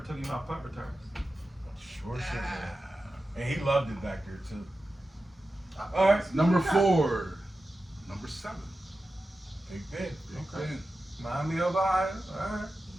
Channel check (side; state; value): both; normal; correlation 0.93